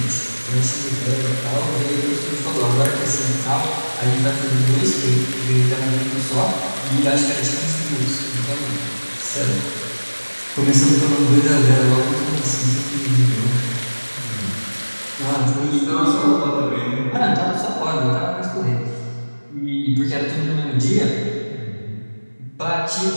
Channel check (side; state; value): both; inverted; correlation -1.00